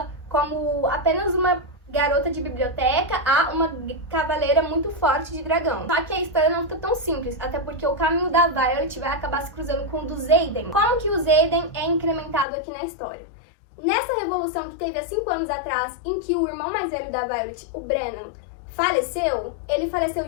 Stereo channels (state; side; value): drops out; right; at 12.5 s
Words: como apenas uma garota de biblioteca a uma cavaleira muito forte de dragão. Só que a história não fica tão simples, até porque o caminho da Violet vai acabar se cruzando com o do Xaden. Como que o Xaden é incrementado aqui na história? Nessa revolução que teve há 5 anos atrás, em que o irmão mais velho da Violet, o Brennan, faleceu, ele faleceu